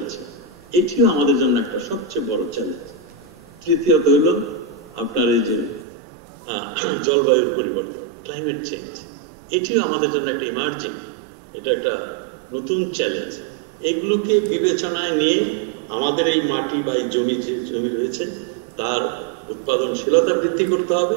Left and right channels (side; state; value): left; drops out; at 5.9 s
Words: এটিও আমাদের জন্য একটা সবচেয়ে বড় চ্যালেঞ্জ। তৃতীয়ত হলো আপনার এই যে জলবায়ুর পরিবর্তন, ক্লাইমেট চেঞ্জ, এটিও আমাদের জন্য একটা ইমার্জিং, এটা একটা নতুন চ্যালেঞ্জ। এইগুলোকে বিবেচনায় নিয়ে আমাদের এই মাটি বা এই জমি, যে জমি রয়েছে, তার উৎপাদনশীলতা বৃদ্ধি করতে হবে